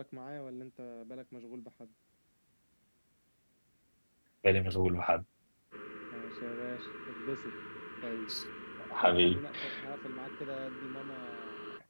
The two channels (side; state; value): both; inverted; correlation -1.00